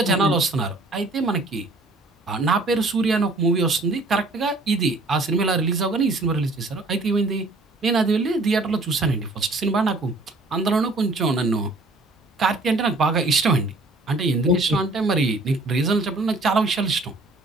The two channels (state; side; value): quieter; left; 3.0 dB